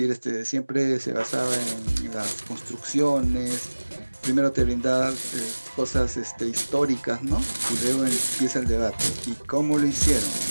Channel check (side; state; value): both; inverted; correlation -1.00